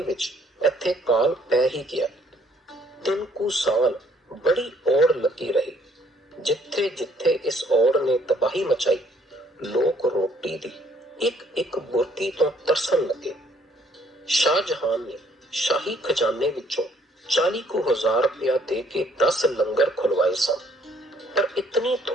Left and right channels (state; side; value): normal; both; correlation 0.64